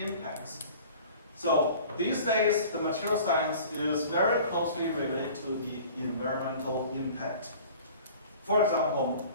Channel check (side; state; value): both; inverted; correlation -0.45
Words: So these days, the material science is very closely related to the environmental impact. For example,